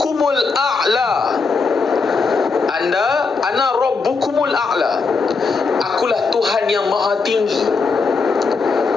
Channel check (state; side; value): quieter; right; 4.6 dB